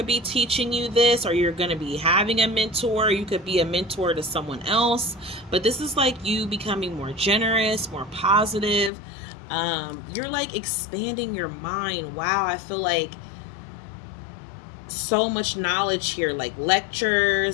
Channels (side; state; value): right; drops out; at 8.9 s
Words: be teaching you this, or you're going to be having a mentor. You could be a mentor to someone else. But this is like you becoming more generous, more positive. You're like expanding your mind. Wow, I feel like so much knowledge here, like